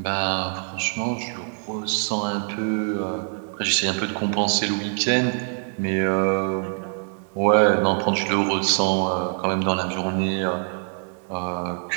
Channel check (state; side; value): silent; left; 56 dB below the other